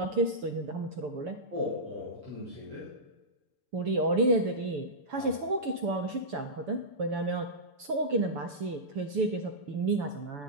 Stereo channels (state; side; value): late; left; 6.9 ms